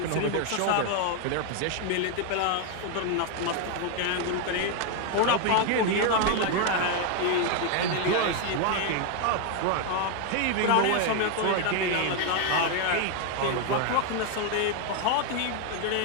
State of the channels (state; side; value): different; both; correlation 0.01